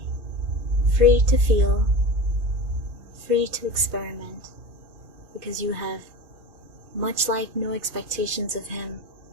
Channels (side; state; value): left; late; 2.5 ms